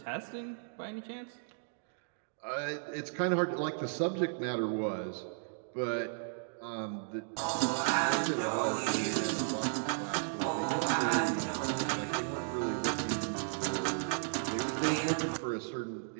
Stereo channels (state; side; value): silent; left; digital silence